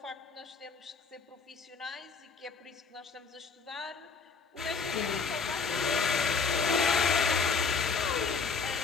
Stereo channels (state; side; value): quieter; right; 5.1 dB